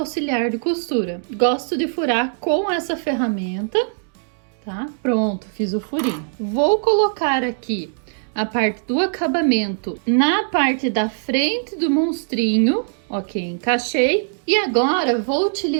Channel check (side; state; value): left; silent; digital silence